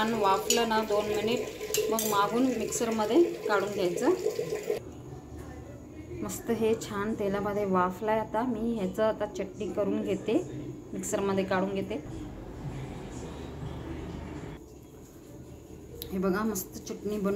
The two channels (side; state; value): both; identical; correlation 1.00